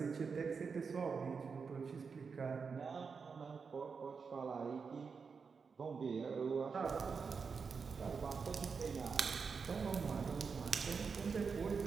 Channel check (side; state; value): left; quieter; 5.4 dB